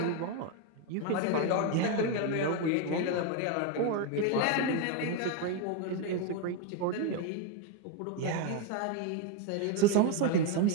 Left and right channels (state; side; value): different; both; correlation 0.02